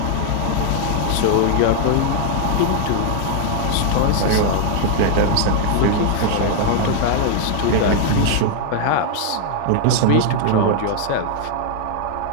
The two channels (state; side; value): different; both; correlation 0.00